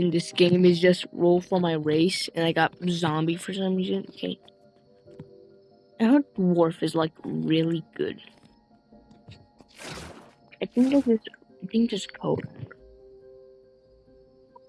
this game is just roll for my race, and I got zombie for some reason. Okay. I heard dwarf is like really good. I think this code.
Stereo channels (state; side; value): identical; both; correlation 1.00